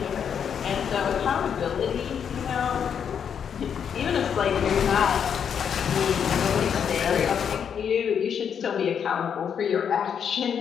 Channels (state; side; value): quieter; right; 7.7 dB